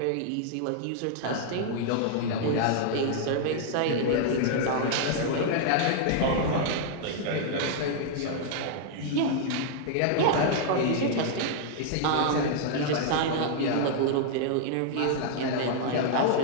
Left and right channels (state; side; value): different; both; correlation -0.01